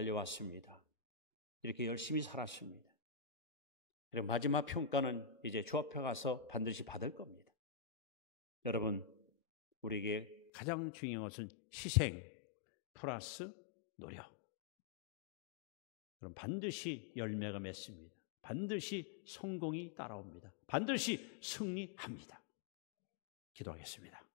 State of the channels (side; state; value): right; drops out; at 10.5 s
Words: 이렇게 열심히 살았습니다. 그리고 마지막 평가는 이제 주 앞에 가서 반드시 받을 겁니다. 여러분, 우리에게 가장 중요한 것은 희생 플러스 노력. 그럼 반드시 열매가 맺습니다. 반드시 성공이 따라옵니다. 반드시 승리합니다. 기도하겠습니다.